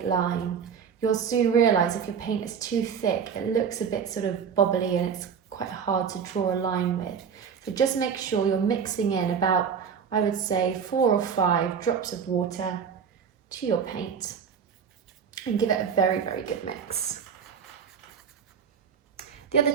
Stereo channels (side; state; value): left; quieter; 7.0 dB